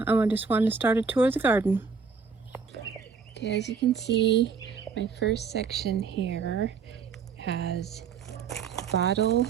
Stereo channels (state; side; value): quieter; left; 5.7 dB